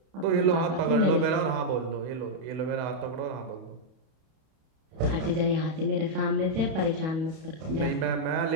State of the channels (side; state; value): left; late; 32 ms